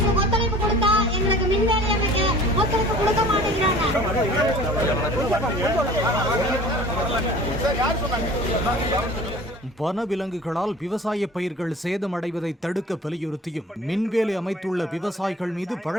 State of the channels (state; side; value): normal; both; correlation 0.45